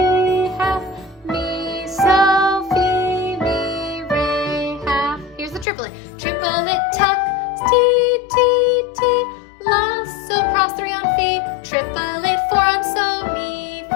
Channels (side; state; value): right; drops out; at 5.7 s